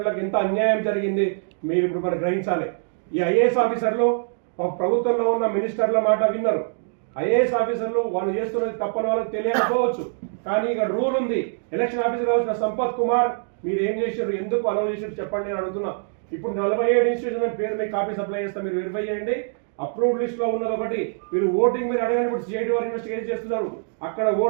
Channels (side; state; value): left; silent; digital silence